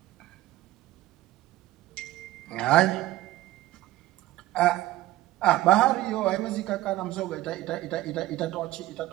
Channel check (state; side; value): quieter; left; 16.3 dB